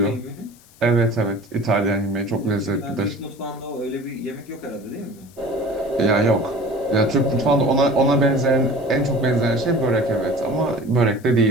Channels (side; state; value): left; noise; hiss, 27 dB below the sound